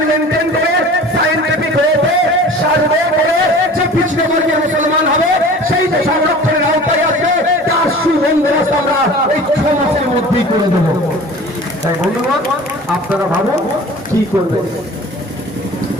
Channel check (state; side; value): normal; both; correlation 0.42